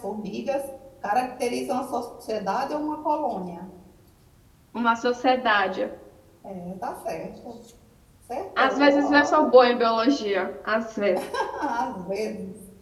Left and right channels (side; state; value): both; identical; correlation 1.00